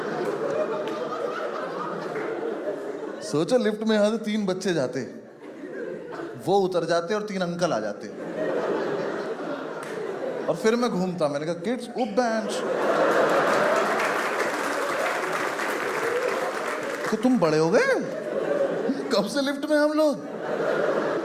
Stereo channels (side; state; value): both; identical; correlation 1.00